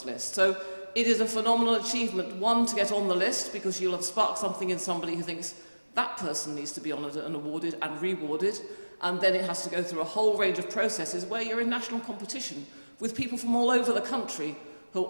list. So it is a phenomenal achievement, one, to get on the list, because you'll have sparked something in somebody who thinks that person needs to be honoured and awarded and rewarded, and then it has to go through a whole range of processes where you're in national competition with people from all over the country who are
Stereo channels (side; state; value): both; inverted; correlation -1.00